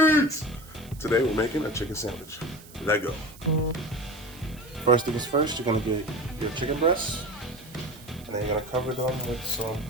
Today we're making a chicken sandwich. Let go. First things first, you're gonna get your chicken breasts, and then you're gonna cover them with some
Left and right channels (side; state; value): right; noise; hiss, 21 dB below the sound